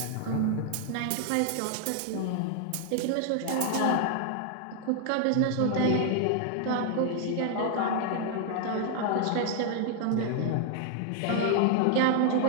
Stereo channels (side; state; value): both; different; correlation 0.00